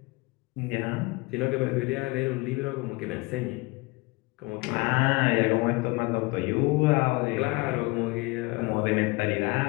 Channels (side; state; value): right; quieter; 24.6 dB